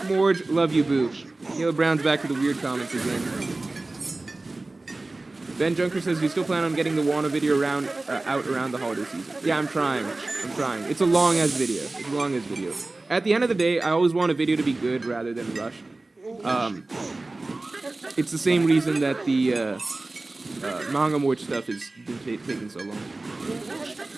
Morge. Love you, boo. Caleb Brown's back to the weird comments again. Ben Junker says, you still plan on getting the Wano video out around the holiday season? Yeah, I'm trying. It's a long-ass video. At the end of the day, I always want a video to be good rather than rushed. It's the same reason that the manga Morge stuff has been taking so long.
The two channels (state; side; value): quieter; left; 3.1 dB